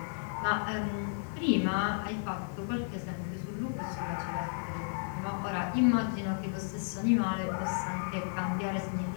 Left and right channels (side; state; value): right; silent; digital silence